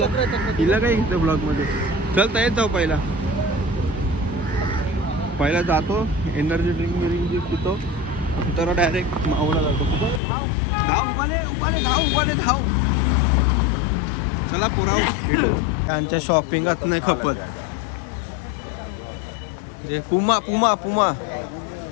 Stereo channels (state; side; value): drops out; right; at 10.2 s